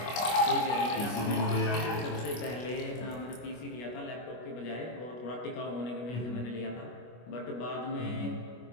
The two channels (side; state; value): right; late; 25 ms